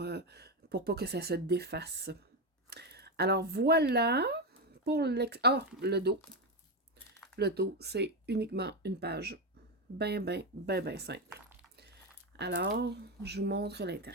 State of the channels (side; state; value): both; normal; correlation 0.11